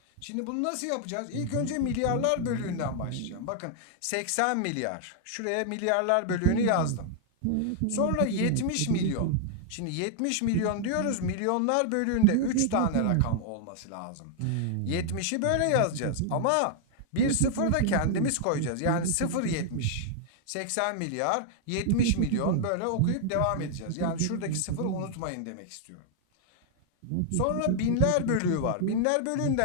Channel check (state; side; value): different; both; correlation 0.00